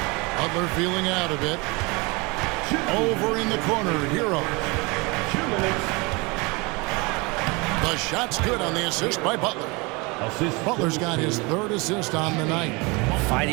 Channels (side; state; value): left; quieter; 26.9 dB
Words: Butler feeling out of it. Over in the corner, Hero. 2 minutes. The shot's good on the assist by Butler. Butler's got his 3rd assist on the night.